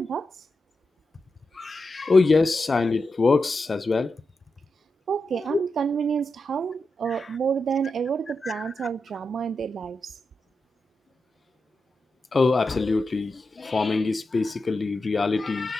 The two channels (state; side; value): normal; both; correlation 0.88